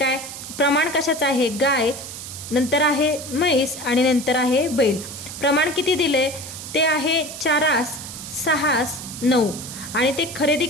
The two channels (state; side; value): noise; right; hiss, 10 dB below the sound